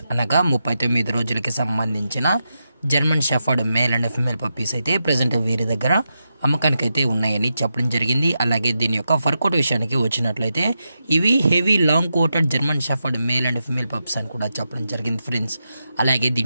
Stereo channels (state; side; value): inverted; both; correlation -0.87